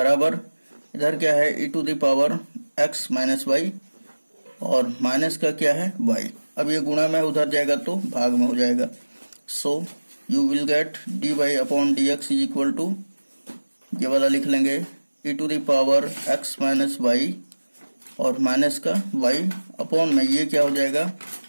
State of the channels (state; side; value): inverted; both; correlation -1.00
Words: इधर क्या है e to the power x minus y और माइनस का क्या है y। अब ये गुणा में उधर जाएगा तो भाग में हो जाएगा, so you will get dy upon dx is equal to, ये वाला लिख लेंगे e to the power x minus y और माइनस का y अपॉन में ये क्या हो जाएगा